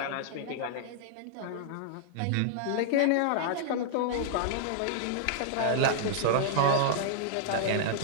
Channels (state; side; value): different; both; correlation -0.01